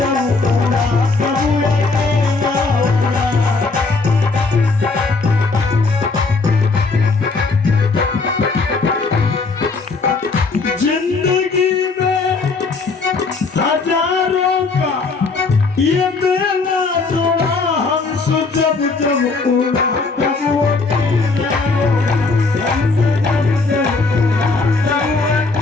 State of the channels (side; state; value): right; quieter; 4.0 dB